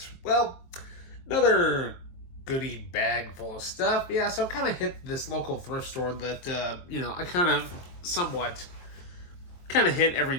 another goodie bag full of stuff. Yeah, so I kind of hit this local thrift store that, I kind of somewhat hit every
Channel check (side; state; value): right; late; 23 ms